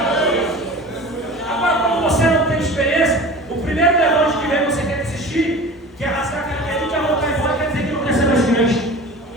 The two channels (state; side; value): normal; both; correlation 0.37